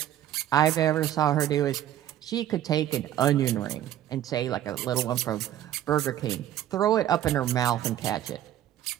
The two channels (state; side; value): quieter; left; 12.0 dB